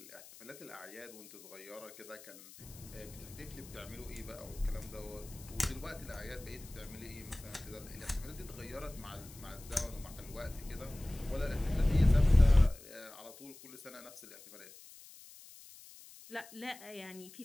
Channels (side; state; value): left; noise; hiss, 18 dB below the sound